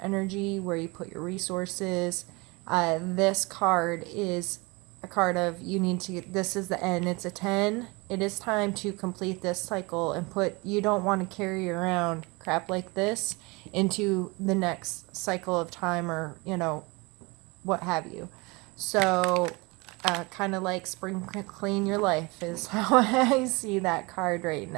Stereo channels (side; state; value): left; quieter; 26.1 dB